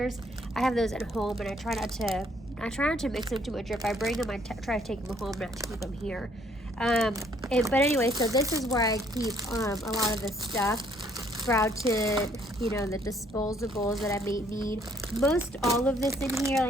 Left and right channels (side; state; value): both; normal; correlation 0.64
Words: I have those at home, and I try not to mix them too much. If I bring them, I try to take them home, not to keep them here. But anyway, so this is where I keep a lot of the stuff. Brow tint, the disposables that I may need. Most all of this in here,